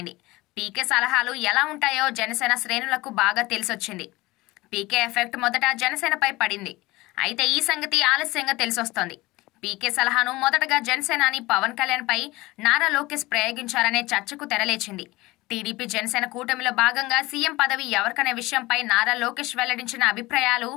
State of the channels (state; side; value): quieter; right; 20.4 dB